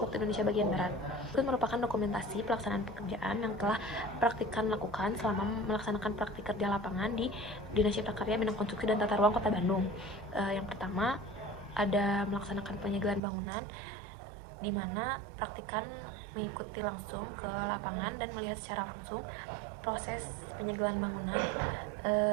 waktu Indonesia bagian Barat. Itu merupakan dokumentasi pelaksanaan pekerjaan yang telah praktikan lakukan selama melaksanakan praktik kerja lapangan di Dinas Cipta Karya Bidang Konstruksi dan Tata Ruang Kota Bandung. Yang pertama, ada melaksanakan penyegelan bangunan, di mana praktikan mengikuti langsung ke lapangan dan melihat secara langsung proses penyegelan bangunan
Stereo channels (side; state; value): left; drops out; at 13.2 s